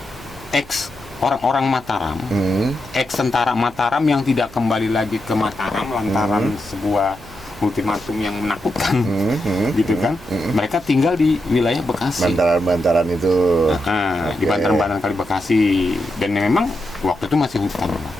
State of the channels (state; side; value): noise; right; hum, 21 dB below the sound